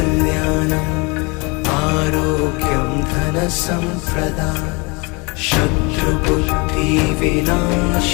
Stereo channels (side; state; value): right; quieter; 28.8 dB